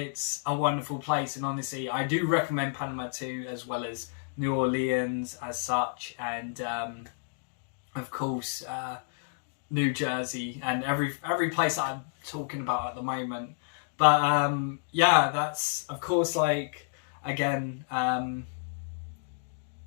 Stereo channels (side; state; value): right; silent; digital silence